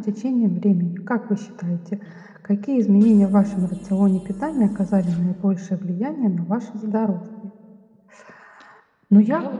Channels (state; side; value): identical; both; correlation 1.00